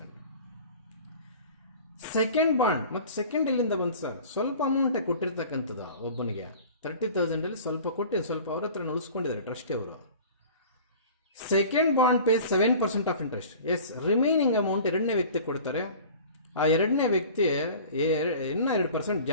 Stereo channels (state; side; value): inverted; both; correlation -0.42